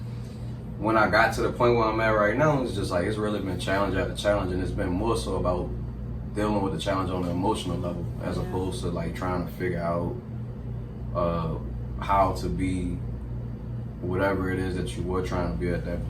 when I got to the point where I'm at right now, it's just like, it's really been challenge after challenge, and it's been more so about dealing with the challenge on the emotional level, as opposed to trying to figure out how to be whatever it is that you were trying to be at that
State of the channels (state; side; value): identical; both; correlation 1.00